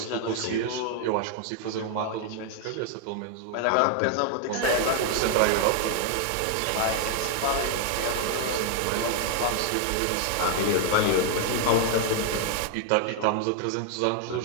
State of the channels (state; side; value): different; both; correlation 0.00